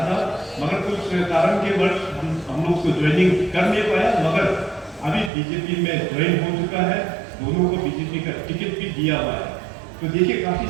था, मगर कुछ कारण के वर्ष हम लोग को ज्वाइनिंग कर नहीं पाया, मगर अभी बीजेपी में ज्वाइन हो चुका है। दोनों को बीजेपी का टिकट भी दिया हुआ है। तो देखिए काफी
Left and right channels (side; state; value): left; drops out; at 5.3 s